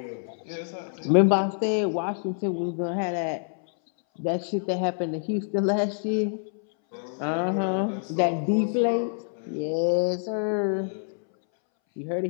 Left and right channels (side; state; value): right; silent; 61 dB below the other